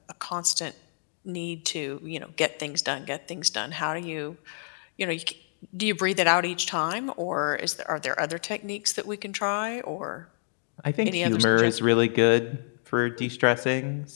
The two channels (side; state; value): right; silent; digital silence